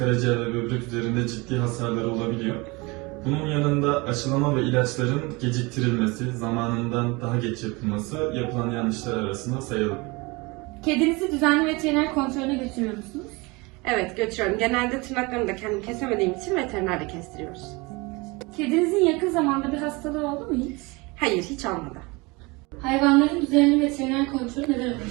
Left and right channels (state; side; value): quieter; left; 25.4 dB